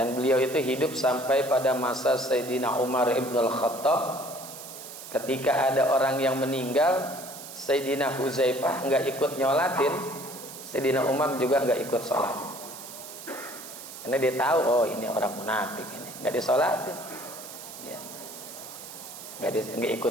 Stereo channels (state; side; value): noise; right; hiss, 13 dB below the sound